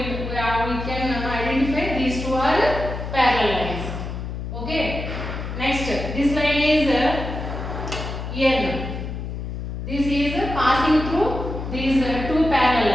can identify these two are parallel lines. Okay. Next, this line is N. This is passing through these two parallel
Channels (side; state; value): left; noise; hum, 6 dB below the sound